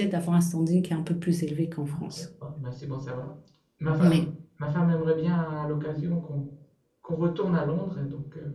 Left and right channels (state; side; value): identical; both; correlation 1.00